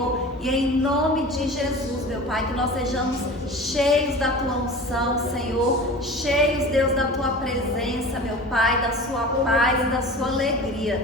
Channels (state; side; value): normal; both; correlation 0.36